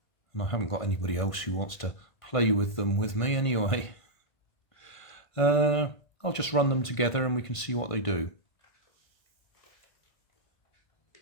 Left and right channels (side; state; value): right; late; 1.5 ms